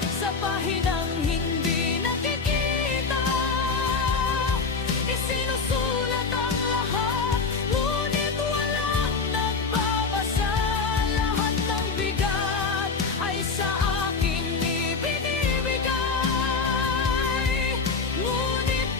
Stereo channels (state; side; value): quieter; right; 4.6 dB